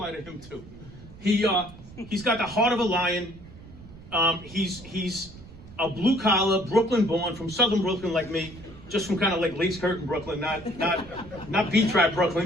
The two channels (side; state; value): right; noise; rumble, 18 dB below the sound